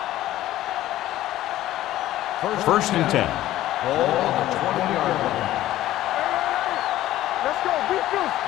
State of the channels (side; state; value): right; quieter; 14.4 dB